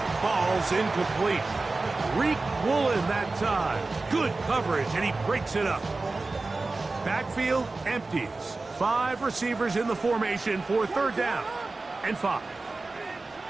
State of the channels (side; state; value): left; quieter; 3.5 dB